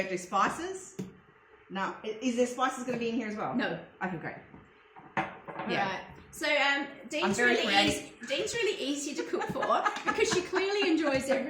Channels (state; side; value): identical; both; correlation 1.00